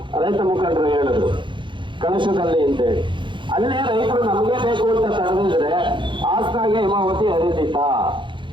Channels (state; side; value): late; left; 0.23 ms